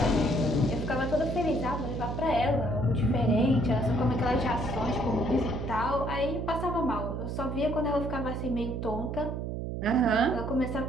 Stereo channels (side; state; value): right; noise; hum, 4 dB below the sound